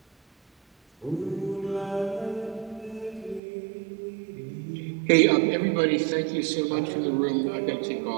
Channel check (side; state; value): left; drops out; at 3.4 s